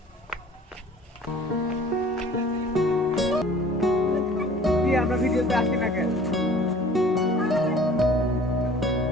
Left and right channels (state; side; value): normal; both; correlation 0.49